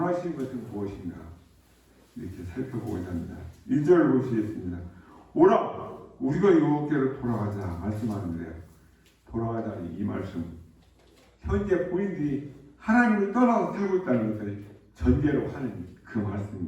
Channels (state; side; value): identical; both; correlation 1.00